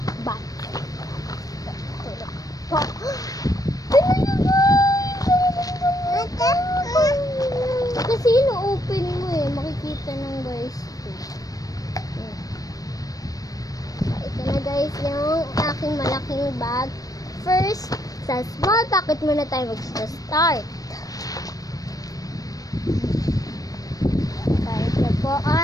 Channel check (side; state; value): right; late; 0.18 ms